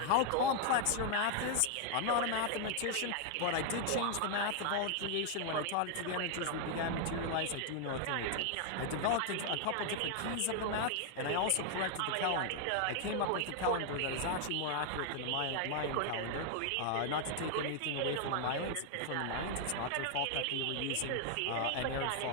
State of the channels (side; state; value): both; different; correlation 0.00